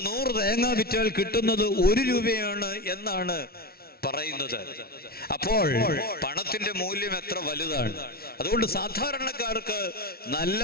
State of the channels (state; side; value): late; right; 0.44 ms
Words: 100 തേങ്ങ വിറ്റാൽ കിട്ടുന്നത് 1 രൂപയാണ് എന്നാണ് പറയുന്നത്. അപ്പോൾ പണത്തിന്റെ മൂല്യം എത്ര വലുതാണ്. അതുകൊണ്ട് സാധാരണക്കാർക്ക് നല്ല